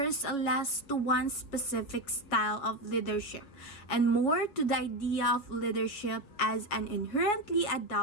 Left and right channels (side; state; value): right; late; 7.2 ms